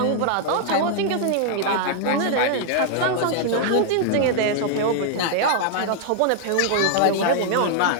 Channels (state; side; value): different; both; correlation 0.00